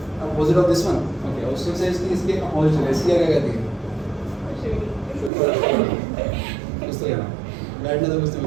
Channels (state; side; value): drops out; left; at 5.3 s